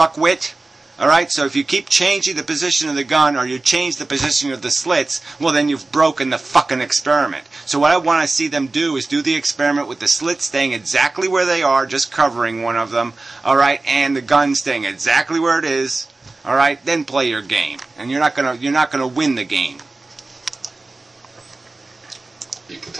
Alright, so if you keep changing the position of the gun, or you change the position of the slits, well then you've broken the fucking experiment. So what I want to see them do is do the experiment with the slits staying exactly where they are, just covering one of them, alright, and the gun staying exactly where it is, alright, then play your game. And you're not gonna win the game. People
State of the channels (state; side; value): quieter; left; 3.3 dB